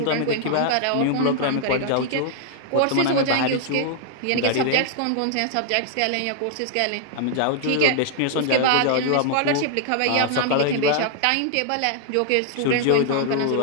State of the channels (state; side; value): different; both; correlation 0.00